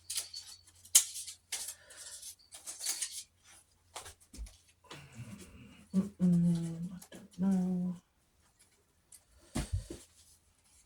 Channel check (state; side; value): identical; both; correlation 1.00